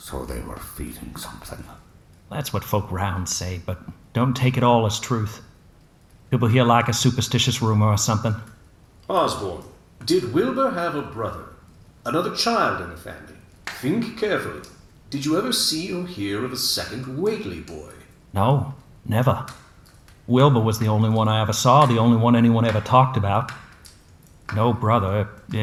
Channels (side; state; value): both; identical; correlation 1.00